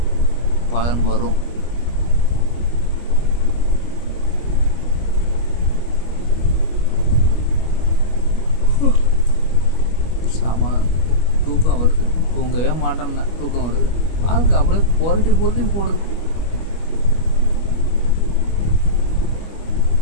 பலன் வரும். சாமா தூக்கம் வருது, தூங்கவே மாட்டேன்னா தூக்கம் வருது. வாழ்க்கை அப்படியே புரட்டி போடுது.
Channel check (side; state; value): right; late; 25 ms